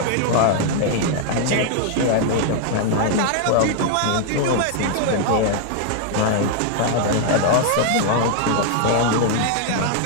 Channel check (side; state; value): both; different; correlation 0.00